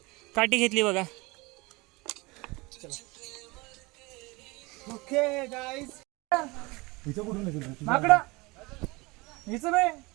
काठी घेतली बघा. ओके गाईज माकडा हिचं बे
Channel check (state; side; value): quieter; left; 24.4 dB